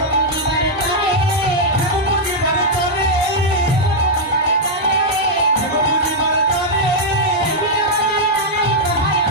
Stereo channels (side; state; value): both; normal; correlation -0.04